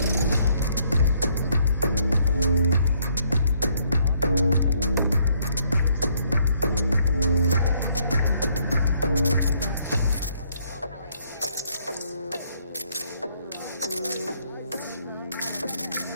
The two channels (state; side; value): inverted; both; correlation -0.69